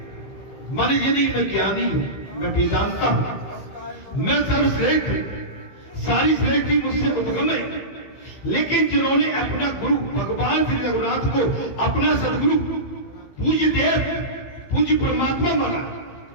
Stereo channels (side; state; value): right; late; 15 ms